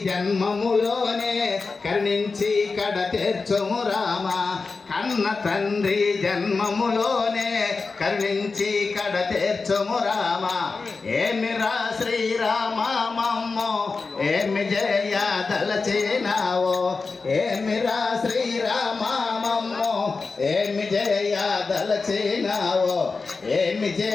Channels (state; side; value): quieter; right; 4.2 dB